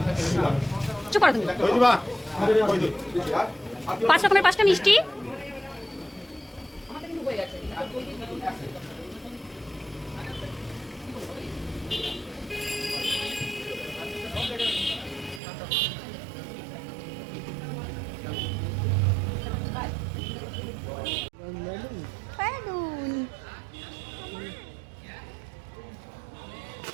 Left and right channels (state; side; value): drops out; left; at 15.4 s